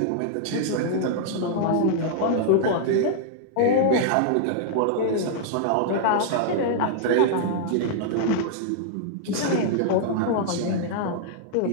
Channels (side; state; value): both; different; correlation -0.01